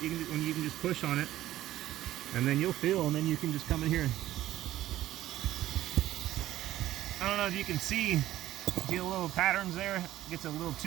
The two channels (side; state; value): left; quieter; 14.0 dB